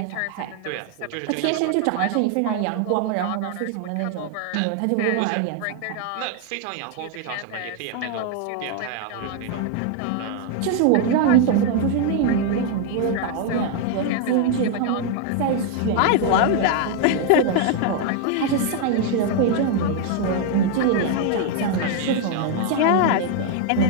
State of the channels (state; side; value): different; both; correlation 0.00